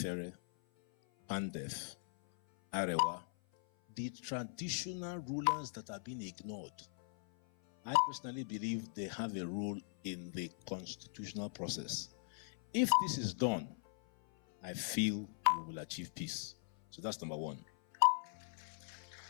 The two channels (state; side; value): silent; right; 51 dB below the other